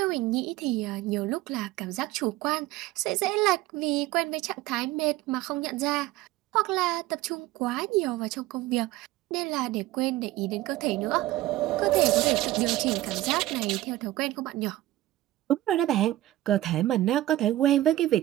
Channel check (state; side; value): quieter; left; 15.8 dB